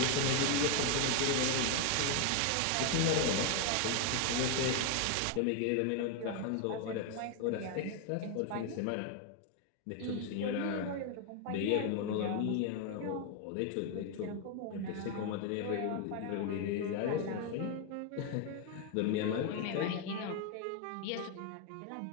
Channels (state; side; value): different; both; correlation 0.01